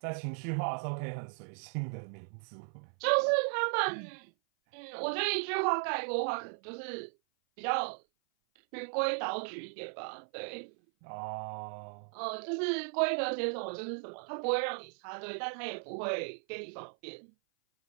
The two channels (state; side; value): silent; left; 54 dB below the other